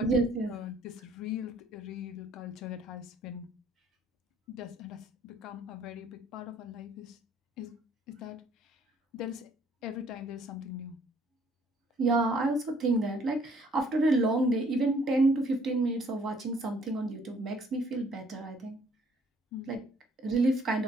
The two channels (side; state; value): both; normal; correlation 0.62